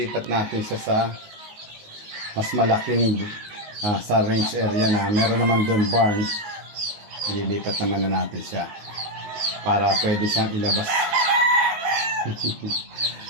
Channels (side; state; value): left; late; 19 ms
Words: natin siya sa mas malaking sa range area na meron naman doon barn. Ililipat naman na natin siya para pwede siyang ilabas.